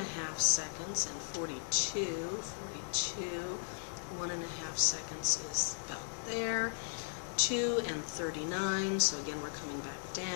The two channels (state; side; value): silent; right; 53 dB below the other